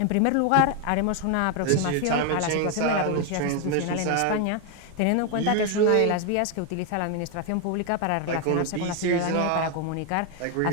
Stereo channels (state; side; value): different; both; correlation 0.01